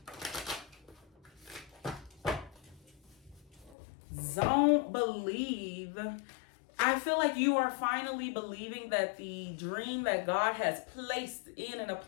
don't believe. I feel like you are finally believing that the dream that God has placed in and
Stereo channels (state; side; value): drops out; right; at 3.8 s